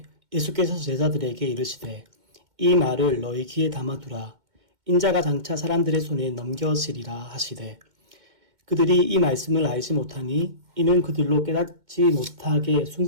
예수께서 제자들에게 이르시되 이 말을 너희 귀에 담아두라. 인자가 장차 사람들의 손에 넘겨지리라 하시되 그들이 이 말씀을 알지 못하니 이는 그들로 깨닫지 못하게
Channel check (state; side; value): late; left; 2.1 ms